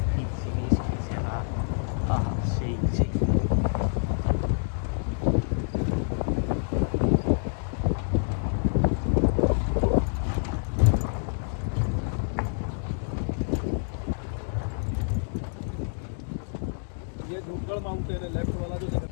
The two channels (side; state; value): right; silent; digital silence